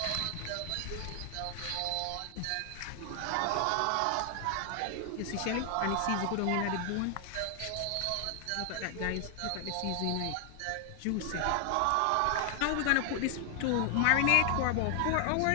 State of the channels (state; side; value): different; both; correlation 0.00